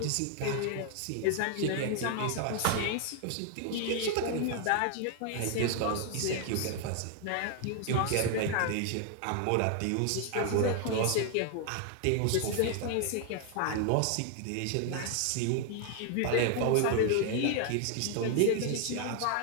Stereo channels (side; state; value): both; different; correlation 0.00